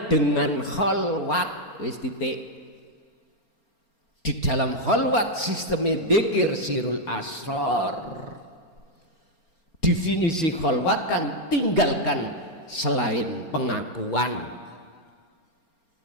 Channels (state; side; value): late; right; 4.3 ms